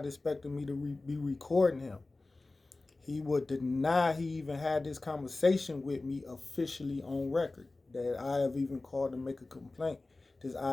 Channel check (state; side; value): quieter; right; 3.2 dB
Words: expecting me to be recording him. He would deny he even had this conversation with me officially on record, that I have even called to make a complaint. This